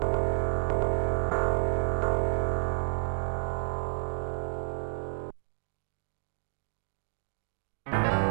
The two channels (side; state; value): left; silent; digital silence